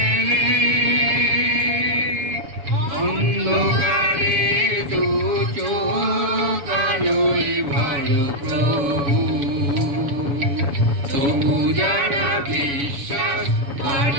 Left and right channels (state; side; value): late; left; 7.1 ms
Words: অন্ধকারে দু চোখ আলোয় ভরো প্রভু। তবু যারা বিশ্বাস